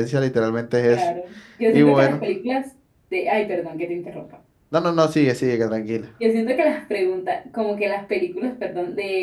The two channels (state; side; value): identical; both; correlation 1.00